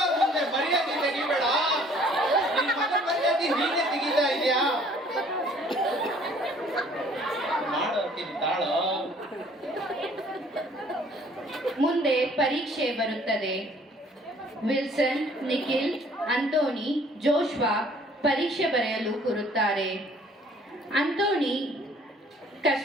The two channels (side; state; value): both; normal; correlation 0.57